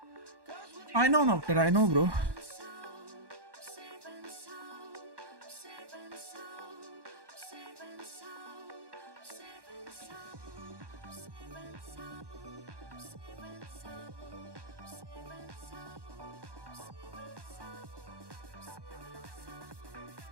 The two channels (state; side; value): late; left; 1.1 ms